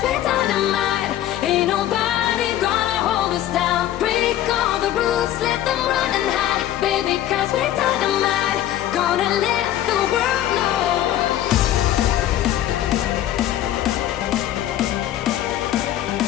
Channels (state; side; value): quieter; right; 12.4 dB